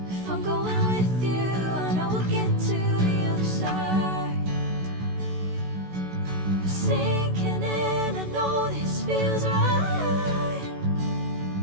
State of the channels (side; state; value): left; late; 16 ms